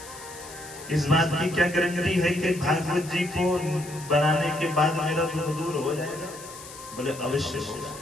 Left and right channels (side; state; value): left; noise; hiss, 15 dB below the sound